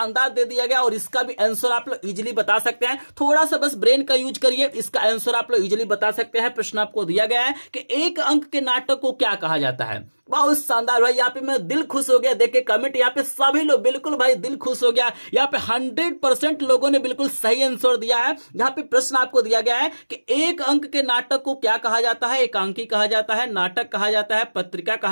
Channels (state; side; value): inverted; both; correlation -1.00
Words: दे दिया गया, और इसका भी आंसर आप लोग इजीली बता सकते हैं। थोड़ा सा बस ब्रेन का यूज करिए, इसका आंसर आप लोग इजीली बता सकते हैं। प्रश्न आपको दिया गया है कि एक अंक के नाटक को क्या कहा जाता है। बहुत शानदार भाई, यहाँ पे मैं दिल खुश हो गया देख के कमेंट। यहाँ पे सभी लोग बिल्कुल भाई दिल खुश हो गया। यहाँ पे 100% लोगों ने बिल्कुल सही आंसर दिया है। यहाँ पे प्रश्न आपको दिया गया है कि एक अंक के नाटक को क्या कहा जाता है। एकांकी कहा जाता है, नाटक कहा जाता है, पत्रिका